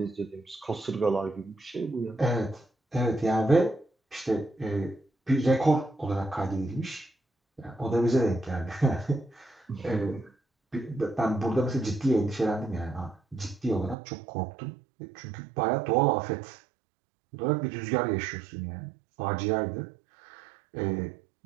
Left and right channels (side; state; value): left; drops out; at 14.0 s